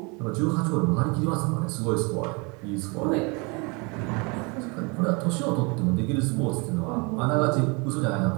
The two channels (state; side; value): quieter; left; 30.1 dB